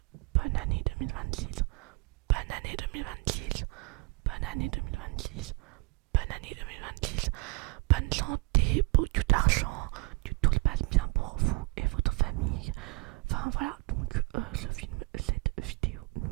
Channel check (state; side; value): quieter; left; 26.5 dB